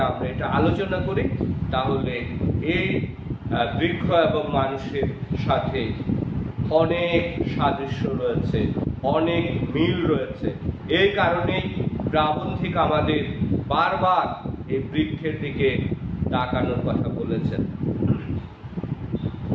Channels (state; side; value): identical; both; correlation 1.00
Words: আমরা এটা আলোচনা করি, তাহলে এই বৃক্ষ এবং মানুষের সাথে অনেক সাদৃশ্য রয়েছে, অনেক মিল রয়েছে। এই কারণেই প্রাবন্ধিক আমাদের বারবার এই বৃক্ষের দিকে তাকানোর কথা বলেছেন।